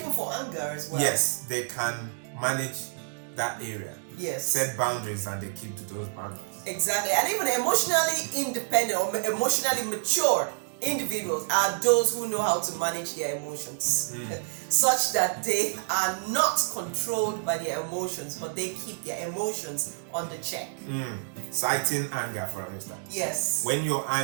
for anger as well. Yes, they can manage that area. Yes. Set boundaries and they keep to those boundaries. Exactly. And even emotionally independent or emotionally mature individuals are those who know how to manage their emotions such that they are not controlled by their emotions, but they keep their emotions under check. Citing anger, for instance. Yes. When you're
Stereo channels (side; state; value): left; silent; digital silence